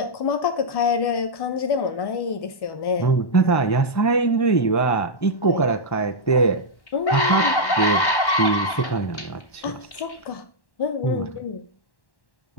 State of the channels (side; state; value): right; late; 1.1 ms